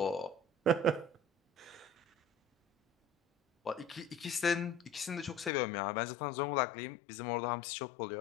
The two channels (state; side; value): drops out; right; at 5.5 s